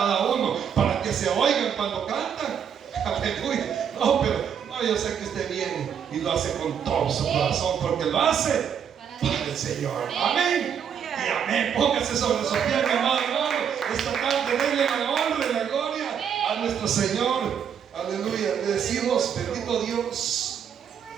uno para que se oigan cuando cantan. Aleluya. No, pero no, yo sé que usted viene y lo hace con todo su corazón, porque lo hace para el Señor. Amén. Y amén. Póngase sobre su pie, mi amado hermano. Esta tarde denle la honra y la gloria a nuestro Señor. Aleluya. Le decimos: bendito Dios,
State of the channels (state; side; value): quieter; left; 8.0 dB